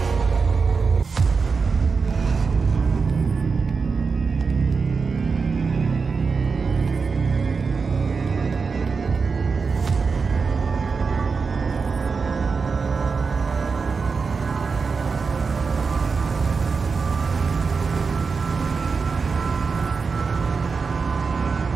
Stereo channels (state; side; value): quieter; left; 5.0 dB